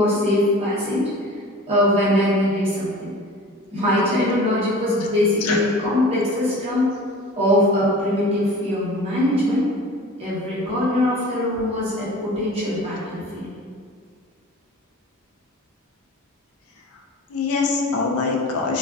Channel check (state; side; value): normal; both; correlation 0.40